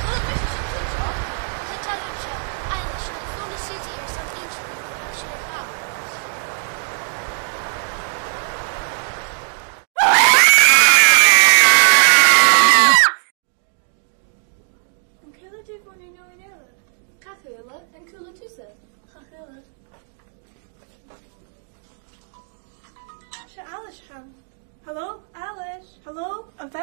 kom met een kutje. Sa talim seo, Eilish, na fóna Susie ar san inch ní go bhfuil siar a há. An cúla dí bhna nó in eile. Cathula and cooler tusa. Chachúla. Se Alice ham. Hello, Alice. Hello, an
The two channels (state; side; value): silent; left; digital silence